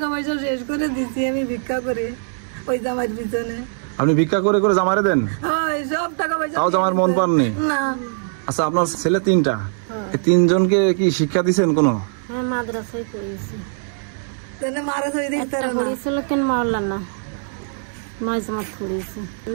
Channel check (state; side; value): silent; left; digital silence